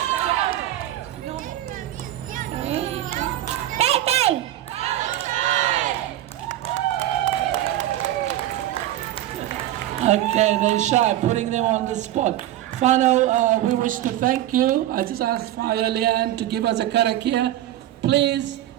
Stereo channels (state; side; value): quieter; left; 13.6 dB